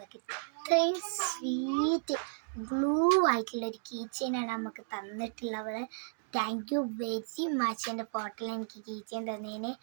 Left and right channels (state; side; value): silent; left; digital silence